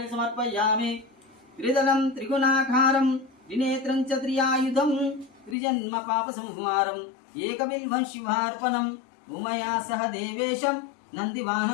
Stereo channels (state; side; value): drops out; right; at 5.6 s